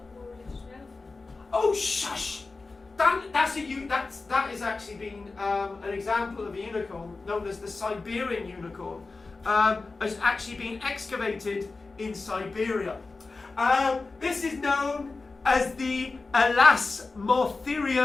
religious relevant. Oh, shush! That is actually been an example of a unicorn known as the Siberian unicorn. Has actually been excavated in Siberia. This is known as the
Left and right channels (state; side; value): quieter; right; 3.8 dB